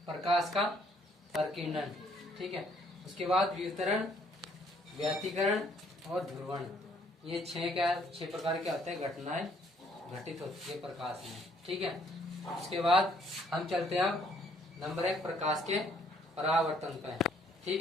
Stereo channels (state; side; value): normal; both; correlation 0.65